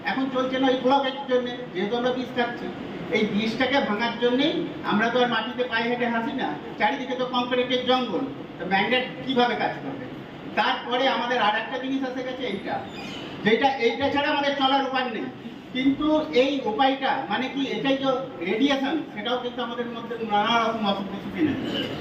এখন চলছে না এই ব্লকের জন্য। যেহেতু আমরা বিষ খাচ্ছি, এই বিষটাকে ভাঙার জন্যেই আমরা তো আর মাটিতে পায়ে হেঁটে হাসি না, চারিদিকে তো কংক্রিটের জঙ্গল, তো ম্যাগনেট কিভাবে কাজ করবে। তারপরে আমাদের আর একটা জিনিস এসে গেছে, এইটা ছাড়া আমাদের চলার উপায় নেই। কিন্তু এই উপায়টা মানে কি, এটাই যে রেডিয়েশন, সেটাও কিন্তু আমাদের মধ্যে নানা রকম অসুখ বিসুখ এনে দেয়।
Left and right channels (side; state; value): both; identical; correlation 1.00